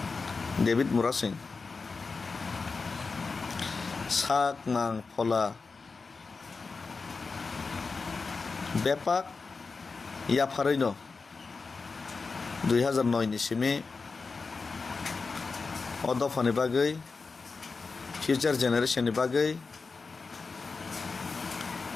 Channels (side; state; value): right; quieter; 4.4 dB